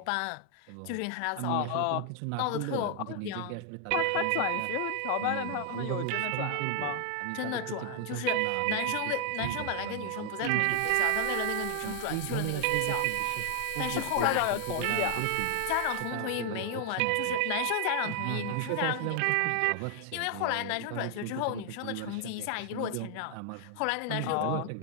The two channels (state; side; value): different; both; correlation 0.00